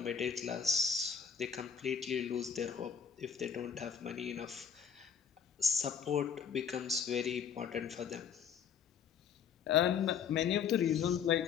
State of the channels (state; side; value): quieter; right; 7.2 dB